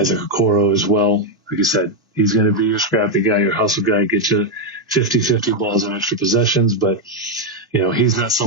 Okoro as well. Like you said, he's going to be your scrappy guy, your hustle guy, get you 50-50 balls and extra possessions. But, he's not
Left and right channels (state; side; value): normal; both; correlation 0.02